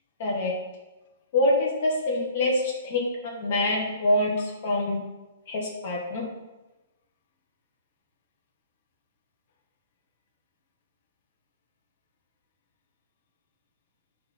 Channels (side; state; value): both; inverted; correlation -0.51